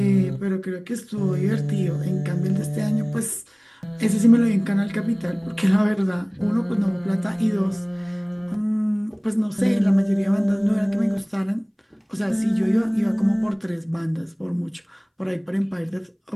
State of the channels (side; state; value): both; identical; correlation 1.00